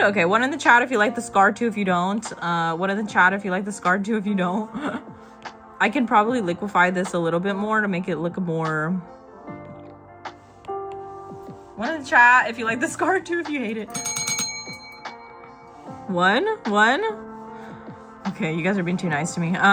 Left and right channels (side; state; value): both; identical; correlation 1.00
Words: Okay, one in the chat if you like the scar too, if you don't. One in the chat if you like the scar too, if you don't. I can probably liquefy this a little bit more to make it look more. One in the chat if you like the scar too, if you hate it. One. Okay, you guys are being too nice to me.